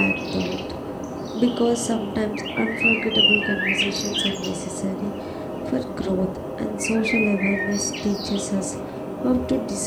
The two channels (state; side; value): identical; both; correlation 1.00